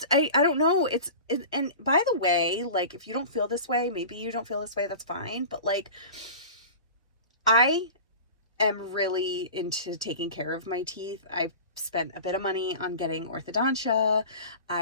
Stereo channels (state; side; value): inverted; both; correlation -0.36